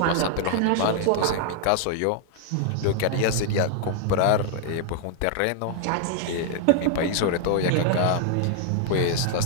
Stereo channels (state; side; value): different; both; correlation 0.00